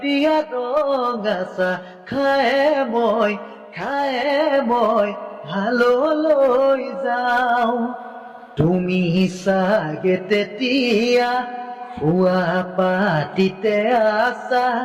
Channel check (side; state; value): both; identical; correlation 1.00